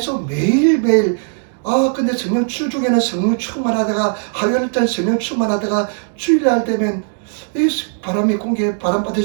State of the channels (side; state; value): left; silent; 60 dB below the other